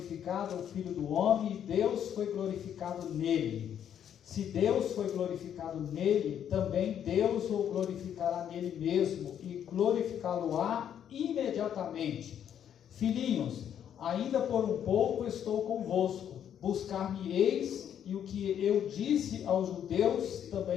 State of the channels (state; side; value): quieter; right; 9.4 dB